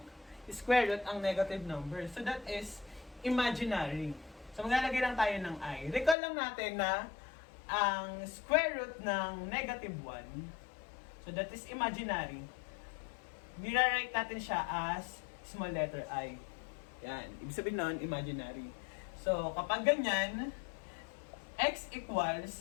square root ang negative numbers. So, that is imaginary. So, maglalagay lang tayo ng I. Recall lang natin na ang square root ng negative 1, so that is imaginary. Nire-write natin siya as small letter I. Yan. Ibig sabihin nun, imaginary. So, kapag ganyan, x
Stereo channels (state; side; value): drops out; right; at 6.2 s